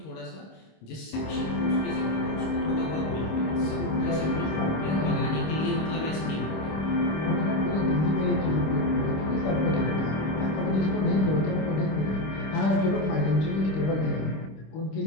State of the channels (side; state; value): right; late; 26 ms